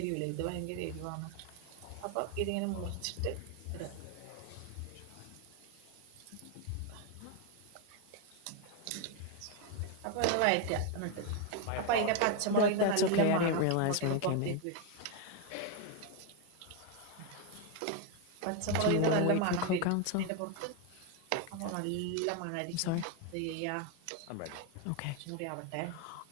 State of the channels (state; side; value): different; both; correlation 0.01